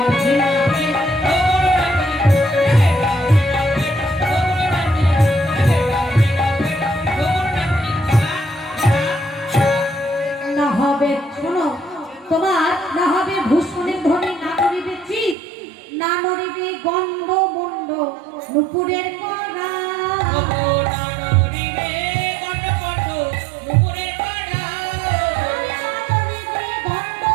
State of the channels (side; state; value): left; drops out; at 15.4 s